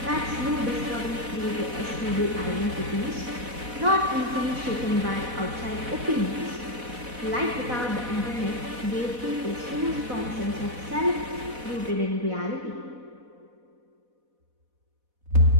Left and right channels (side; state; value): left; late; 4.1 ms